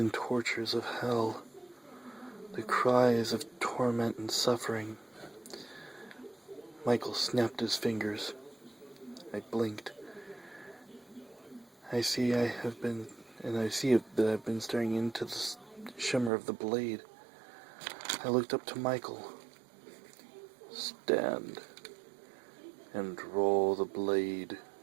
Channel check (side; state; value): left; drops out; at 16.3 s